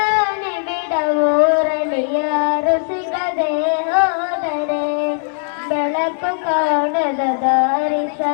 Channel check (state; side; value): silent; right; 61 dB below the other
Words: ನಿಬಿಡವೂರಲಿ ಯಾರು ಸಿಗದೆ ಹೋದರೆ ಬೆಳಕು ಕಾಣದ ದಾರಿ